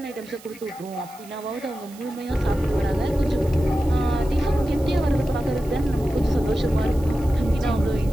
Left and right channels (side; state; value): right; noise; hiss, 22 dB below the sound